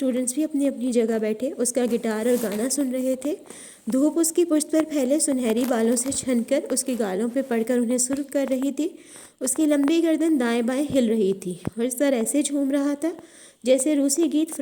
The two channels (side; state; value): both; identical; correlation 1.00